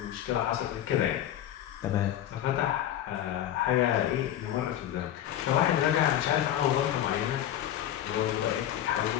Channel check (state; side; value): quieter; right; 11.7 dB